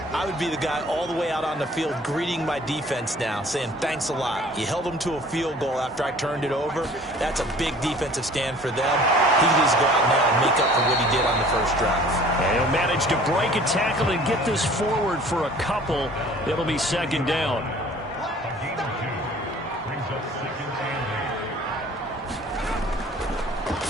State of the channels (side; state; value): both; normal; correlation 0.50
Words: I would be the guy all the way out on the field greeting my defense now, saying thanks a lot. You held them to a field goal after I turned it over. That's a big defensive stand for them. He can just go out now and make up for what he did on the first drive. And he'll manage to break a tackle and get this forward for a couple. It'll be second down.